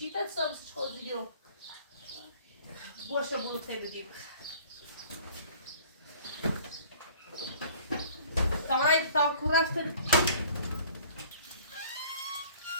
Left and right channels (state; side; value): inverted; both; correlation -0.51